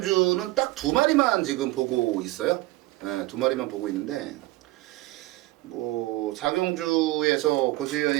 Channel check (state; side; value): quieter; left; 19.3 dB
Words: 딱 두 마리만 지금 보고 있어요. 네, 두 마리만 보고 있는데 뭐 4경주에서